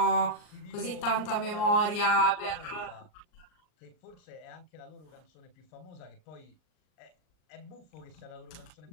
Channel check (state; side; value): late; right; 39 ms